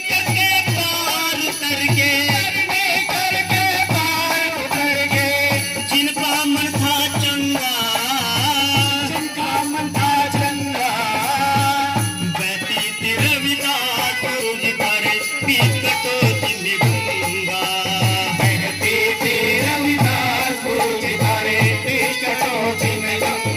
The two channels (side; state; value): both; identical; correlation 1.00